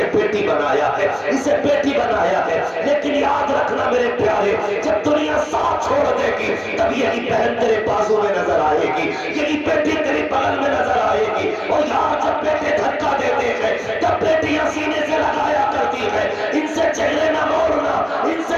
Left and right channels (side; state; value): both; identical; correlation 1.00